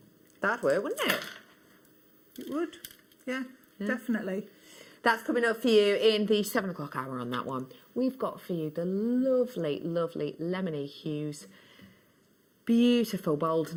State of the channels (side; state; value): both; identical; correlation 1.00